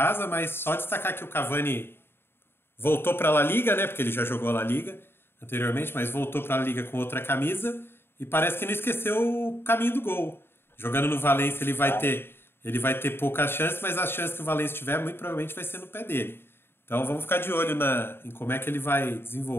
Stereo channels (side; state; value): right; late; 0.11 ms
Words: mas só destacar que o Cavani voltou para a La Liga, né? Porque ele já jogou a La Liga anteriormente, mas voltou para a La Liga com outra camisa e parece que não esqueceu o caminho do gol. Jogando no Valência ele vai ter poucas chances, mas as chances que o Valência tiver muito provavelmente vai ser no pé dele. Então vamos ficar de olho em como é que ele vai